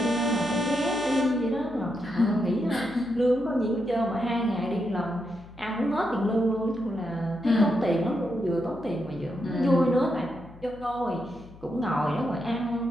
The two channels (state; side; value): noise; left; hum, 20 dB below the sound